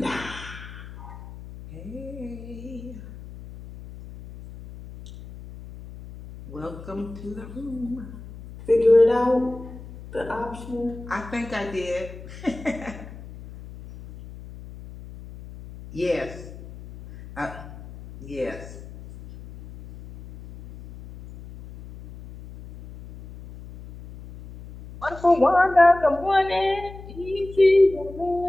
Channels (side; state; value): left; noise; hum, 15 dB below the sound